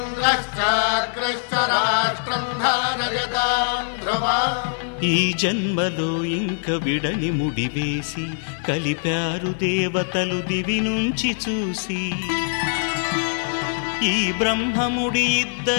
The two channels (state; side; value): silent; right; digital silence